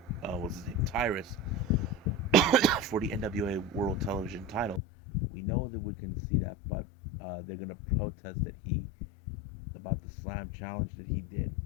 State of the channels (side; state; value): right; drops out; at 4.8 s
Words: his name, Tyrus, for the NWA World Television title. We know that we can see that, but they're gonna protest that he about the slam challenge that he did.